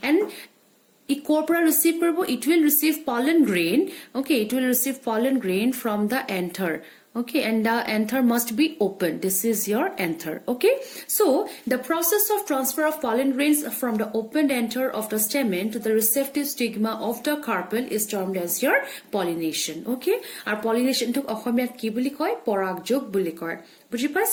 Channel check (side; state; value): both; identical; correlation 1.00